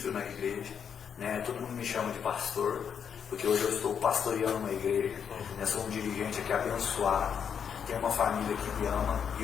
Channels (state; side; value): quieter; right; 7.5 dB